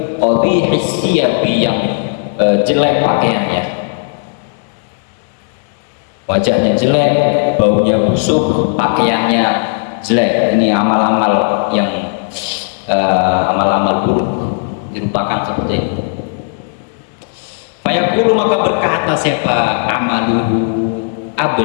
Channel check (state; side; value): silent; right; 70 dB below the other